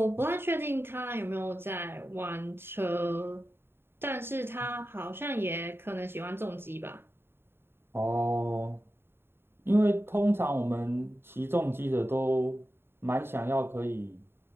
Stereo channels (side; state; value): left; late; 0.11 ms